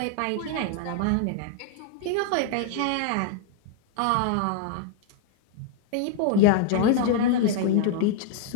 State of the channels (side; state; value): both; different; correlation 0.00